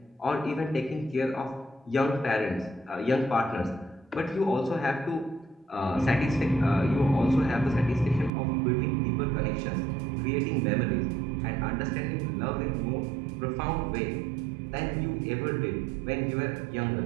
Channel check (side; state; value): left; drops out; at 8.3 s